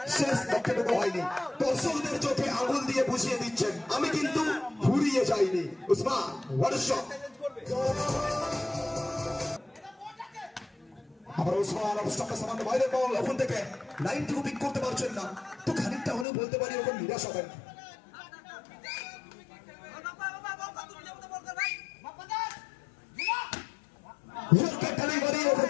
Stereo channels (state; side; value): drops out; right; at 16.2 s